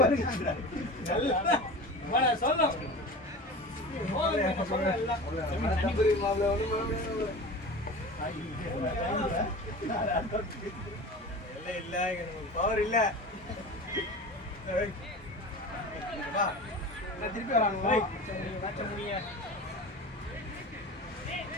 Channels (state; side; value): normal; both; correlation 0.34